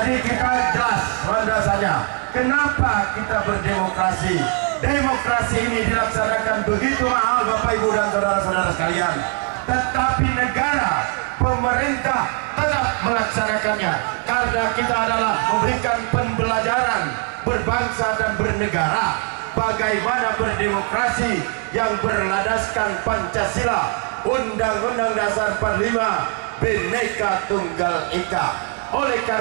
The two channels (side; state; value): left; quieter; 35.4 dB